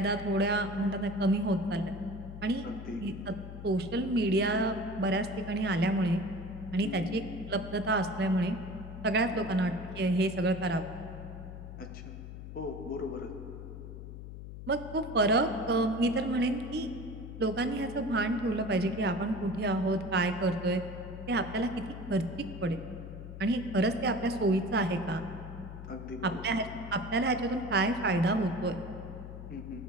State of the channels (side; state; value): left; noise; hum, 11 dB below the sound